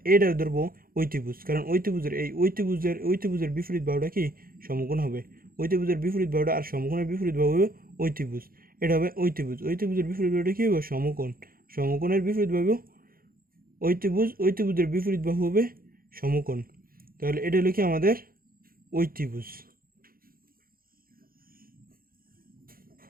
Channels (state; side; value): late; left; 0.42 ms